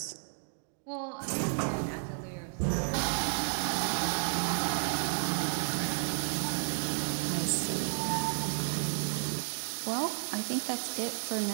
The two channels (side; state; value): left; silent; 56 dB below the other